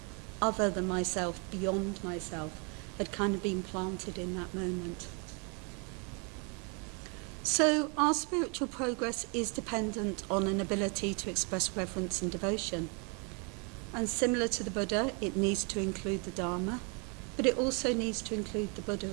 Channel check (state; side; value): quieter; left; 35.0 dB